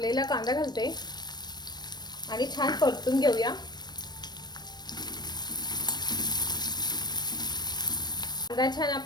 कांदा घालते आणि छान परतून घेऊया। कांदा छान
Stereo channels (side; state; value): right; late; 0.20 ms